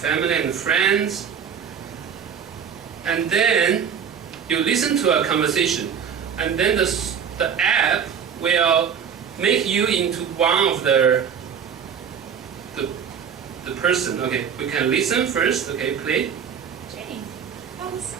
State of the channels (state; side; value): quieter; left; 7.4 dB